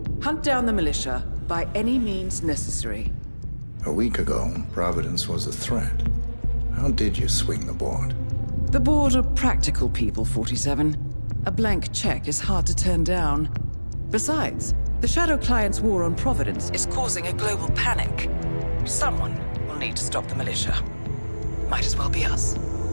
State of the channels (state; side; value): inverted; both; correlation -1.00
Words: Hunt down the militia by any means necessary. A week ago, Providence was a threat. How did you swing the board? The board are practical people, 47. A blank check is hard to turn down. Besides, the Shadow Client's war on Providence is causing a global panic. Someone will need to stop the militia. Might as well be us.